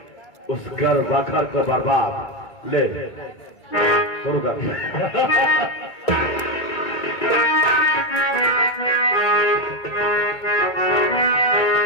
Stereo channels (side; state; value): right; late; 2.2 ms